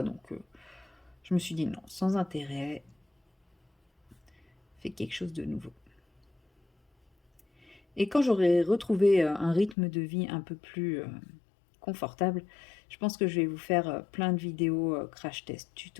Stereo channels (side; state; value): right; drops out; at 9.8 s